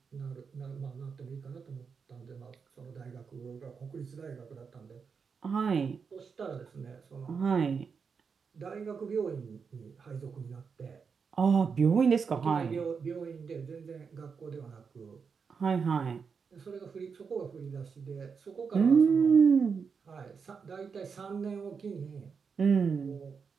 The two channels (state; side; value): quieter; left; 5.8 dB